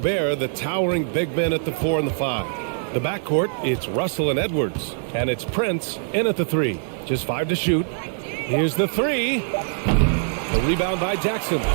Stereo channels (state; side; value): silent; left; digital silence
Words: the towering big men at the 4 and the 5. The backcourt, it's Russell and Edwards. And it's Prince in at the 3. Just 5 to shoot. Here's the 3. The rebound by Jackson.